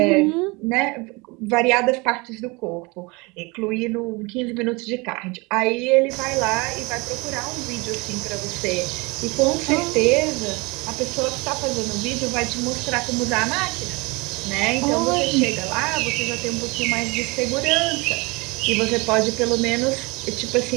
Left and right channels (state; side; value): quieter; left; 26.3 dB